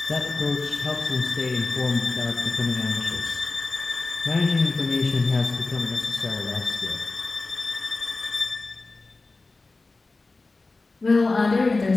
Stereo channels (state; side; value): quieter; right; 3.5 dB